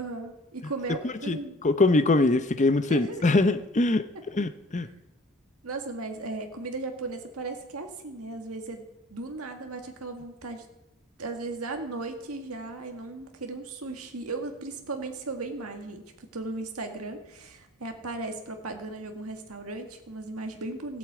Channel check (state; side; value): normal; both; correlation 0.51